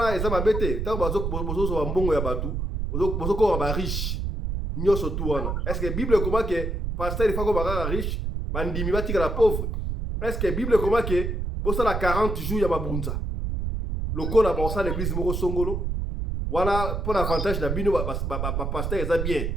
eza mabete tango bozozo mbongo ya batu bozokoma ba riche nyonso tu wana est-ce que bible comment que pasteur il faut ko bakaka riche bandimi batika la pauvre est-ce que bible comment que bosala 40 jours ya mabunza lokola bosala l'église moko songolo wana pour avantage na bino ba pasteur eza bien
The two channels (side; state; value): right; noise; rumble, 2 dB below the sound